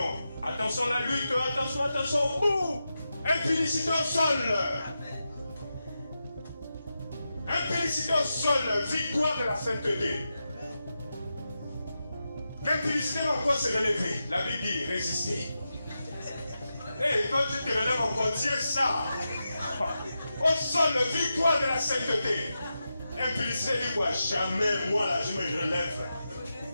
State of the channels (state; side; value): inverted; both; correlation -0.89